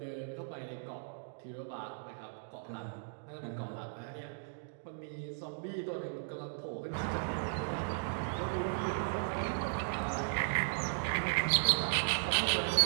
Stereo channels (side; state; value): left; silent; digital silence